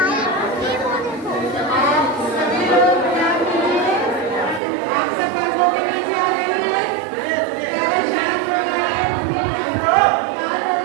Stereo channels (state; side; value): drops out; left; at 4.6 s